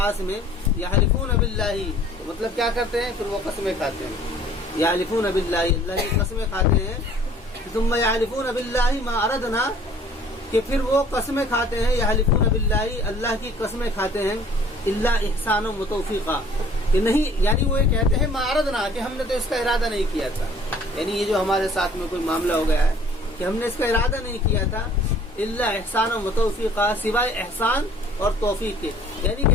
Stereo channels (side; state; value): both; normal; correlation 0.54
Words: میں، یحلفون باللہ، تو مطلب کیا کرتے ہیں، پھر وہ قسمیں کھاتے ہیں، یحلفون باللہ، اللہ کی قسمیں کھاتے ہیں، ثم یحلفون باللہ ما اردنا، کہ پھر وہ قسمیں کھاتے ہیں، یحلفون باللہ، اللہ کی قسمیں کھاتے ہیں، الا احسان و توفیقا، کہ نہیں، یعنی وہ یہ کہتے ہیں ما اردنا، کہ ہم نے تو اس کا ارادہ نہیں کیا تھا، یعنی یہ جو ہمارے ساتھ میں کوئی معاملہ ہو گیا ہے کہ ہم نے اس کا ارادہ نہیں کیا تھا، الا احسان و توفیقا، سوائے احسان اور توفیق کے، یعنی